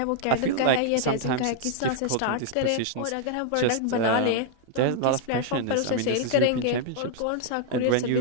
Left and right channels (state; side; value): different; both; correlation -0.01